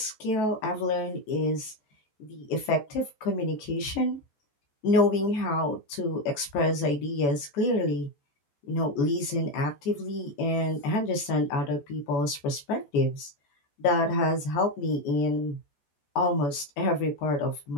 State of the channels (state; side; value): late; right; 14 ms